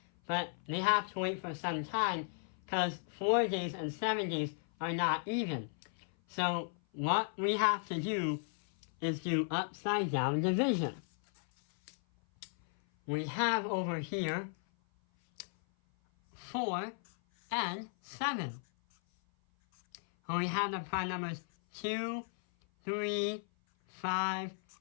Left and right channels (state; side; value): silent; right; 54 dB below the other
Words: but they have to wait for some time because 4 days and 7 days are not even. So what we have to do is do upside down division. We have over here 4 and 7. And we have the prime numbers 2, 3, 5,